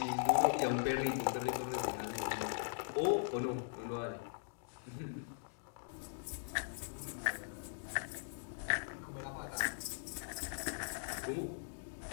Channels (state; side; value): silent; right; digital silence